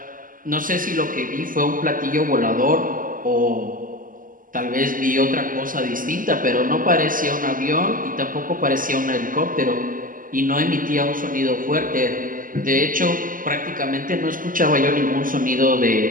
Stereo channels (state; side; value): late; left; 0.40 ms